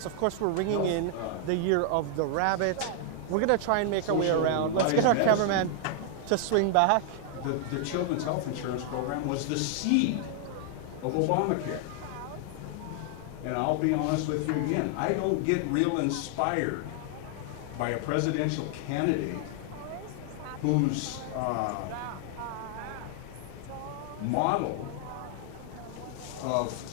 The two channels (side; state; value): both; different; correlation 0.00